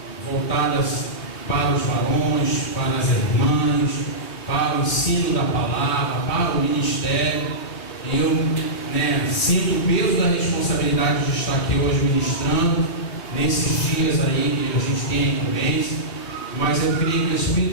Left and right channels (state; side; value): late; right; 3.1 ms